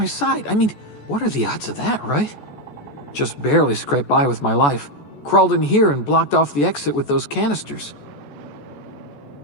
side. I mean, what are the odds of that, right? Just barely scraped by with my life. Crawled in here and blocked off the exit with those canisters.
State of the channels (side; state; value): right; late; 14 ms